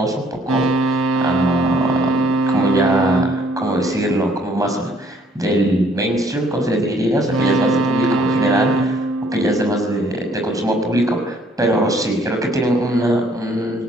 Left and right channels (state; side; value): normal; both; correlation 0.62